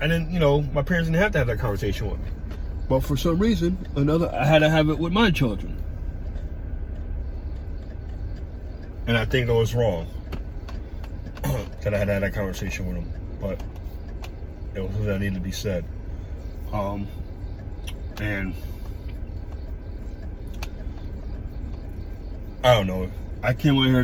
My parents didn't have to have that conversation with me. But for some reason, I had to have it with my children. And I think it was wrong that I had to have that conversation with them. But it was something that needed to be said. And I don't know. I came in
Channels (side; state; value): both; identical; correlation 1.00